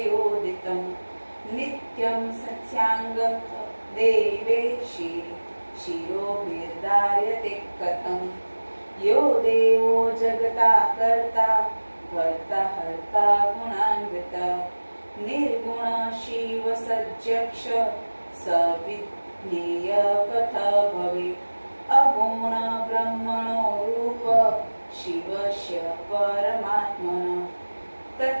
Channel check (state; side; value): inverted; both; correlation -1.00